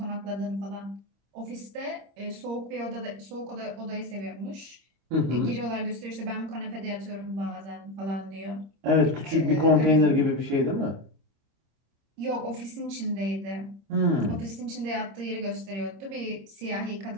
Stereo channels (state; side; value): late; left; 26 ms